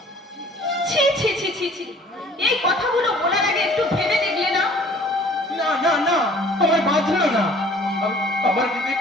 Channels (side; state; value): both; normal; correlation 0.52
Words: ছি ছি ছি ছি ছি, এই কথাগুলো বলার আগে একটু ভেবে দেখলে না? না না না, আমার বাঁধলো না, আমার